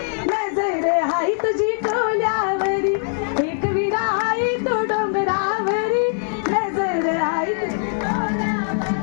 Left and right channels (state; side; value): silent; right; digital silence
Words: नजर आई तुझी कोल्यावरी एकविरा आई तो डोंगरावरी नजर आई तुझी